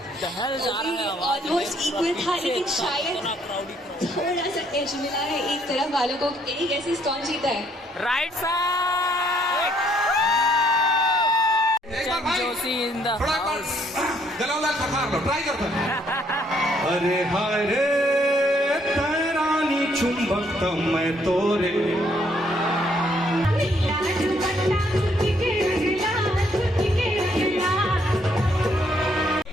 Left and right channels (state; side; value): normal; both; correlation 0.68